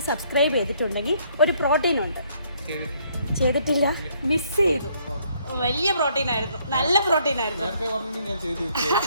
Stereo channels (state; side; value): inverted; both; correlation -0.67